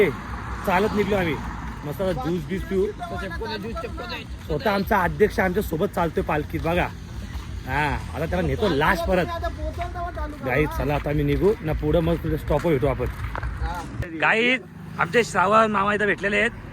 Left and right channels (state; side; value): identical; both; correlation 1.00